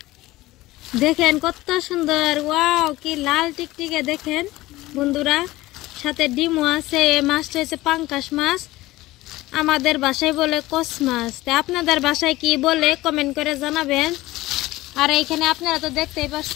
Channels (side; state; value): right; quieter; 18.1 dB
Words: দেখেন কত সুন্দর ওয়াও কি লাল টিকটিকে দেখেন বন্ধুরা সাথে ডিমও আছে এই মাছটা হচ্ছে পাঙ্গাস মাছ আমাদের ভাষায় বলে কস মাছ তা আপনাদের ভাষায় কি বলে কমেন্ট করে জানাবেন আর এইখানে আপনারা তো দেখতেই